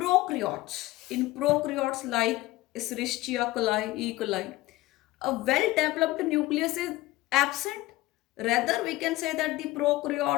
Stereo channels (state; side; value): quieter; right; 17.9 dB